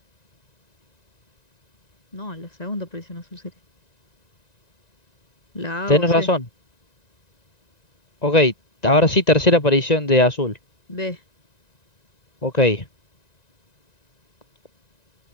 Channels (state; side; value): late; right; 1.9 ms